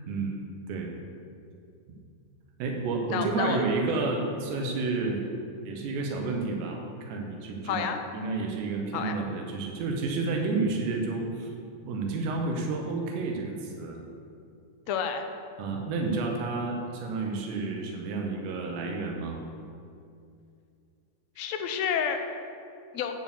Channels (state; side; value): late; left; 15 ms